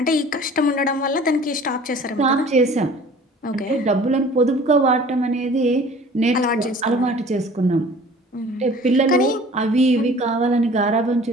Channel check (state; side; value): normal; both; correlation 0.47